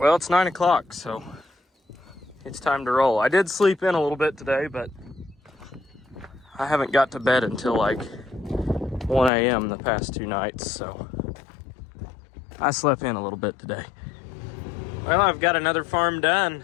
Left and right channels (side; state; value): right; drops out; at 9.3 s